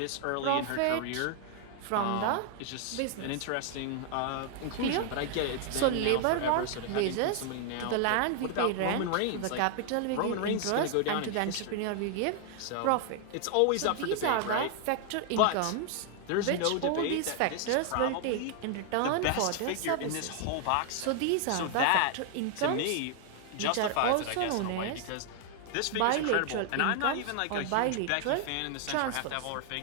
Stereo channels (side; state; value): both; different; correlation 0.00